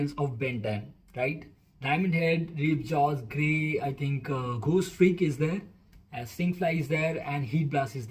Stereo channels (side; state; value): both; identical; correlation 1.00